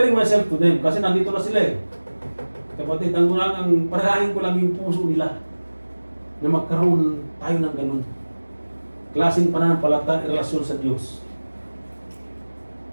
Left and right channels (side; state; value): both; inverted; correlation -1.00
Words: myself to them kasi nandito na sila eh. Kapatid, ang panalangin ko lang yung puso nila na magkaroon tayo ng ganun. Klaseng pananampalataya, relasyon sa Diyos.